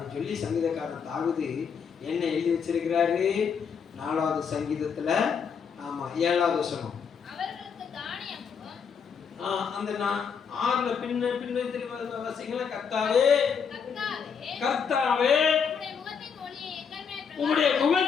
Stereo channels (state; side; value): quieter; right; 6.6 dB